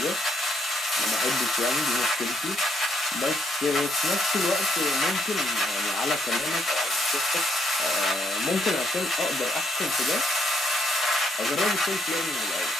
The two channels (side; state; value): both; normal; correlation 0.72